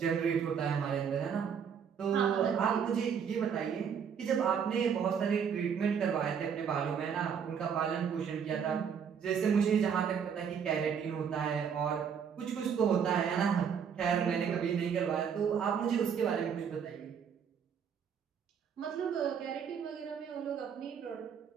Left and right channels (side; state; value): left; quieter; 7.3 dB